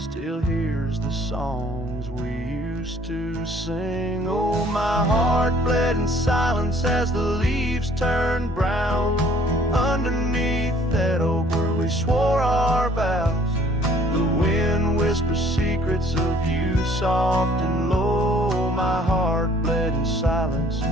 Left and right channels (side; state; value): both; normal; correlation 0.58